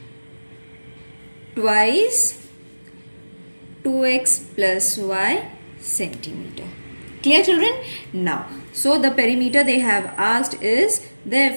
twice 2x plus y centimeter. Clear, children? Now, so the perimeter they have asked is,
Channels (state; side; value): inverted; both; correlation -1.00